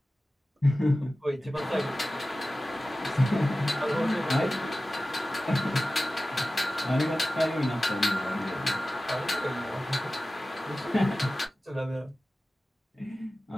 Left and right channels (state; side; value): normal; both; correlation 0.96